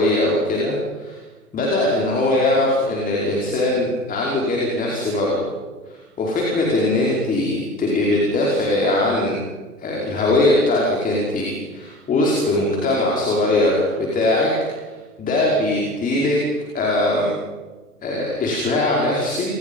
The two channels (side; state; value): both; normal; correlation 0.37